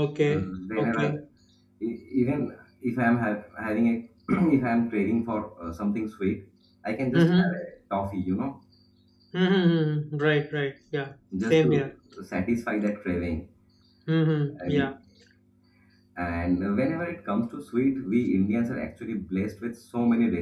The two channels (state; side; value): identical; both; correlation 1.00